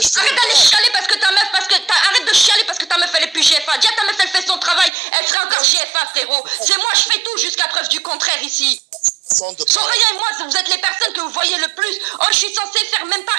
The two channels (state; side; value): drops out; left; at 4.9 s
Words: je fais. Arrête d'aller chialer parce que ta meuf, arrête de chialer parce que ta meuf elle est plus GFA. Dis à ta meuf elle fait son travail, elle serait encore GFA, frérot. C'est moi, je fais tout jusqu'à preuve du contraire ici. Soraya et moi, vous êtes les personnes que vous voyez le plus. Oh, je suis censée faire même pas